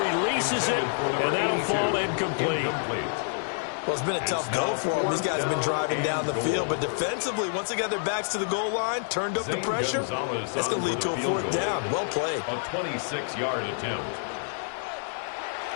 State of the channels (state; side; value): silent; right; digital silence